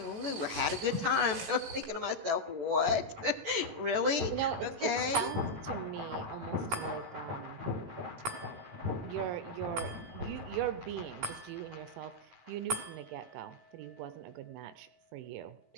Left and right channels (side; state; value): left; late; 18 ms